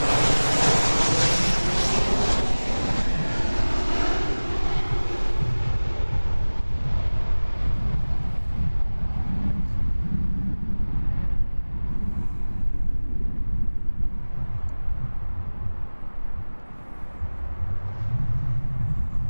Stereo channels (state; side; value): inverted; both; correlation -1.00